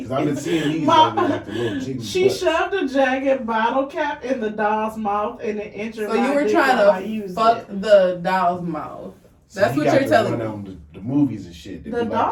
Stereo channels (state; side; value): identical; both; correlation 1.00